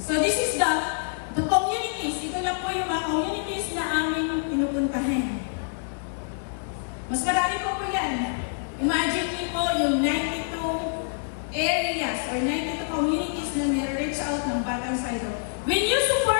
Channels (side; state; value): right; silent; digital silence